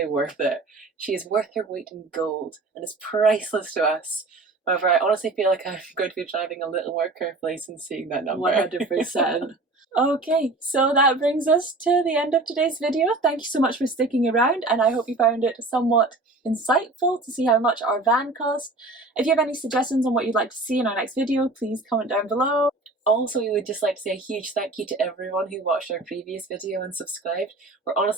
worth it. She is worth her weight in gold and is priceless to us. However, I honestly feel like I'm going to be driving a little more carefully since seeing that number. 100%. Okay, so that brings us to the end of today's video. Thank you so much for sticking around, and I hope you found it somewhat insightful to see how much our van cost. If you have any suggestions on what you'd like to see in our next video, please comment down below. Also, we would just like to say a huge thank you to everyone who watched our previous video and subscribed. We're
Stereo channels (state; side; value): quieter; left; 3.1 dB